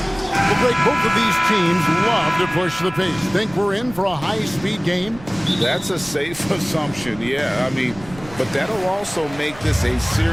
break, both of these teams love to push the pace. Think we're in for a high-speed game? That's a safe assumption, yeah. I mean, but that'll also make this a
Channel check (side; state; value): right; noise; rumble, 18 dB below the sound